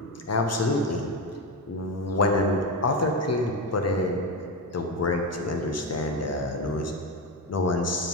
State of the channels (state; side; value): normal; both; correlation 0.15